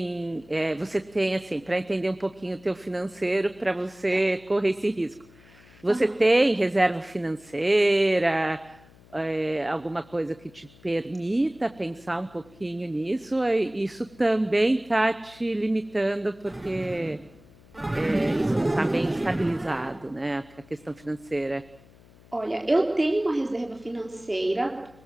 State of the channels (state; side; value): noise; left; hum, 25 dB below the sound